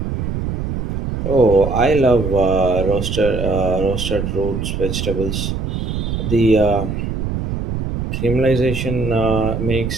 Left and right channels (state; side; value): noise; right; rumble, 3 dB below the sound